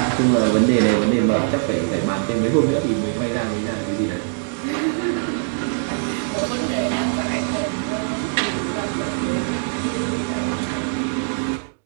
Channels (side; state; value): left; silent; digital silence